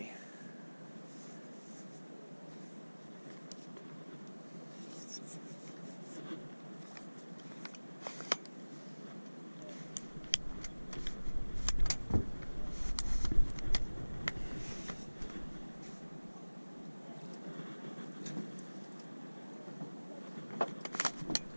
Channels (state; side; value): inverted; both; correlation -1.00